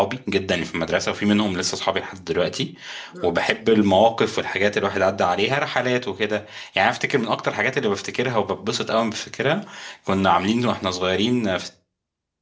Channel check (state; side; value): identical; both; correlation 1.00